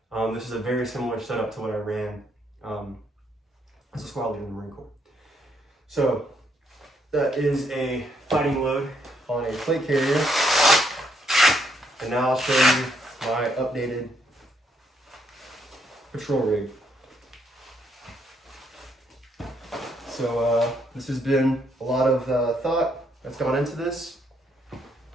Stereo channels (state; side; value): normal; both; correlation 0.73